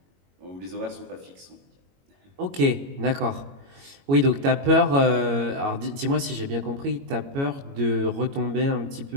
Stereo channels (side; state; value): left; late; 22 ms